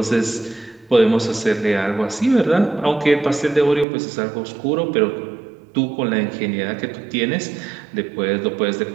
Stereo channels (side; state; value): left; drops out; at 3.9 s